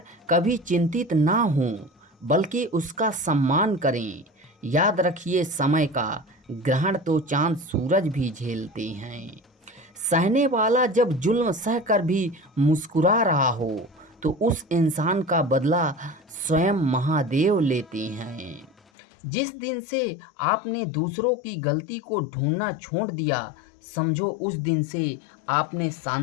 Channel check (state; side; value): drops out; right; at 18.8 s